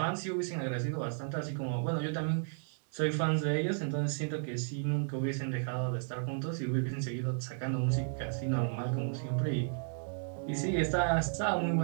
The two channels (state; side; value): silent; left; digital silence